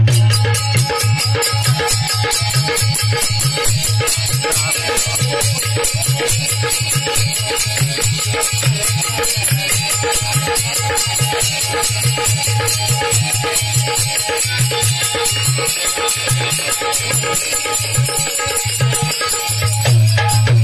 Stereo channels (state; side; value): identical; both; correlation 1.00